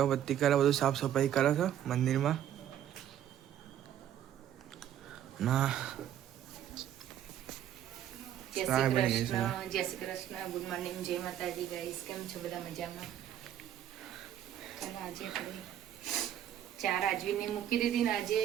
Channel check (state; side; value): quieter; left; 10.8 dB